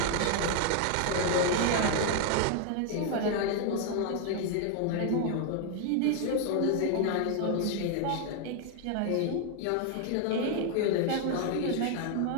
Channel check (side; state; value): both; different; correlation 0.00